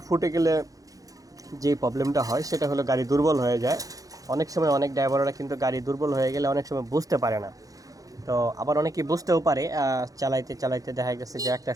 ফুটে গেলে যে প্রবলেমটা হয় সেটা হলো গাড়ি দুর্বল হয়ে যায়। অনেক সময় অনেক ড্রাইভাররা কিন্তু গাড়ি দুর্বল হয়ে গেলে অনেক সময় বুঝতে পারে না। তো আবার অনেকেই বুঝতেও পারে, চালাইতে চালাইতে দেখা গেছে যে একটা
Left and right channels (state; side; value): late; left; 0.17 ms